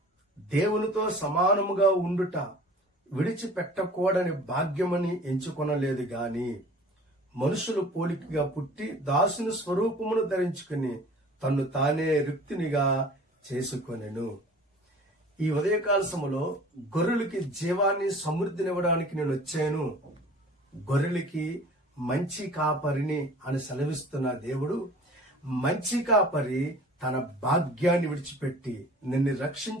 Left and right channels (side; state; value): both; normal; correlation 0.46